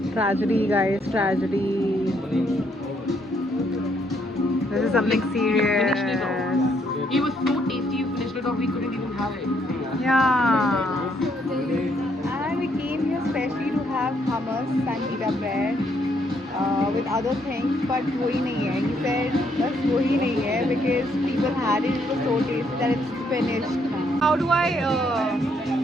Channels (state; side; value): normal; both; correlation 0.72